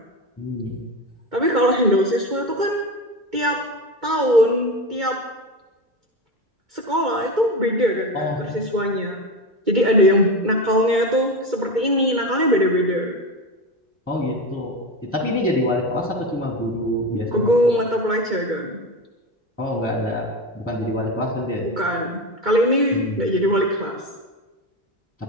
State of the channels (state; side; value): late; left; 2.2 ms